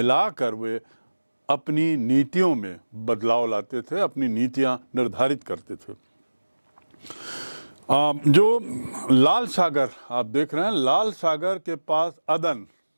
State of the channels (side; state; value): both; inverted; correlation -1.00